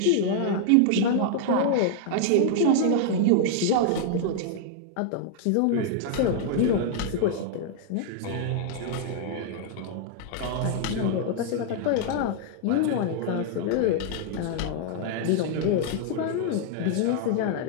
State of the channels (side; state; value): both; different; correlation -0.01